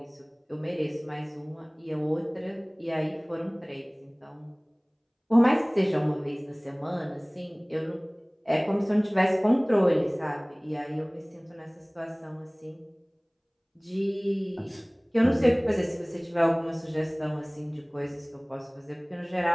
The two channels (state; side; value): identical; both; correlation 1.00